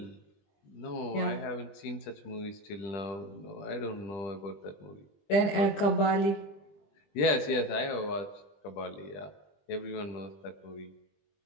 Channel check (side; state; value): right; late; 20 ms